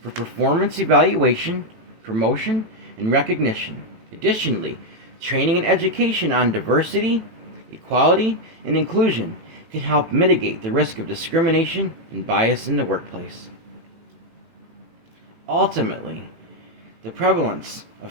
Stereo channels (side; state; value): left; late; 18 ms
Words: performance evaluation, promotion, and recognition. Additionally, training and education on diversity, equality, and inclusion can help mitigate the risk of discrimination and bias in the workplace. Ultimately, the prevalence of